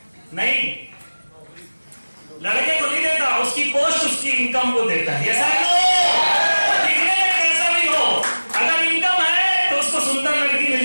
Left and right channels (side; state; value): both; inverted; correlation -1.00